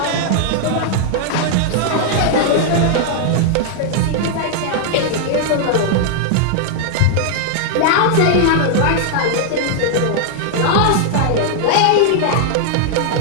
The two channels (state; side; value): different; both; correlation -0.01